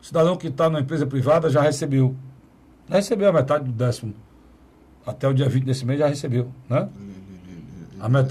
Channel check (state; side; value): identical; both; correlation 1.00